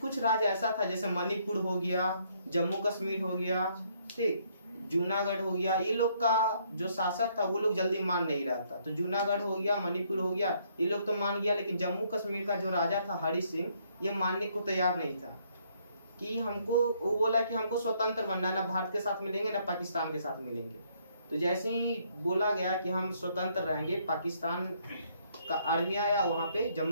राज्य ऐसा था जैसे मणिपुर हो गया, जम्मू कश्मीर हो गया, ठीक, जूनागढ़ हो गया, ये लोग का जो शासक था वो लोग जल्दी मान नहीं रहा था। तो जूनागढ़ हो गया, मणिपुर हो गया, ये लोग तो मान गया, लेकिन जम्मू कश्मीर का जो राजा था हरि सिंह, ये मानने को तैयार नहीं था कि हमको, वो बोला कि हमको स्वतंत्र बनना है, ना भारत के साथ मिलेंगे ना पाकिस्तान के साथ मिलेंगे। तो जैसे ही बोला गया कि हम स्वतंत्र रहेंगे, पाकिस्तान का आर्मी आया, वहां पे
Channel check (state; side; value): inverted; both; correlation -0.68